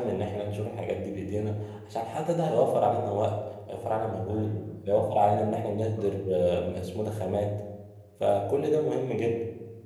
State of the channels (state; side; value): identical; both; correlation 1.00